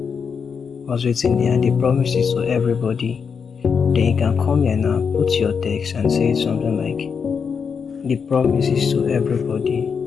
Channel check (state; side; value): quieter; right; 6.2 dB